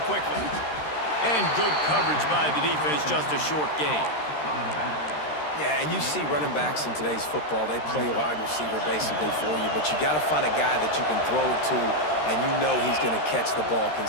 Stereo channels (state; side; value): late; right; 13 ms